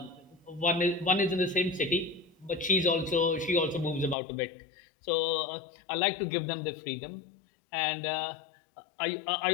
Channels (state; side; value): drops out; right; at 4.2 s